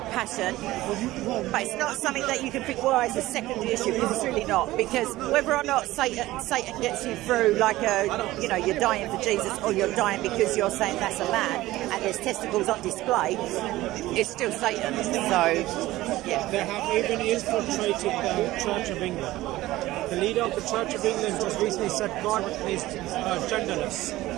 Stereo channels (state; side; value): quieter; left; 17.0 dB